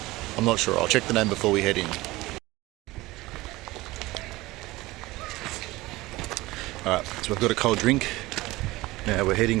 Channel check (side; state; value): left; quieter; 19.6 dB